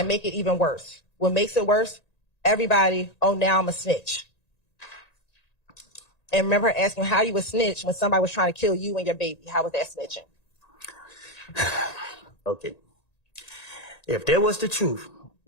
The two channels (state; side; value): late; right; 1.9 ms